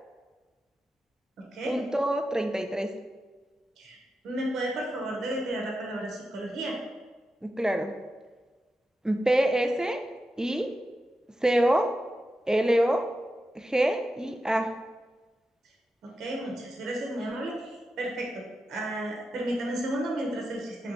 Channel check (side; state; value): both; normal; correlation 0.89